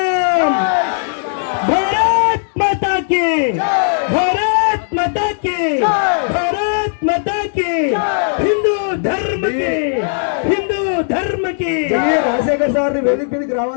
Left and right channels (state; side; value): silent; right; digital silence